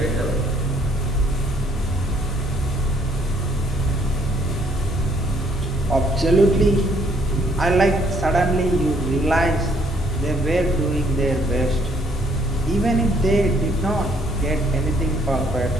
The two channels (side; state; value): both; normal; correlation 0.65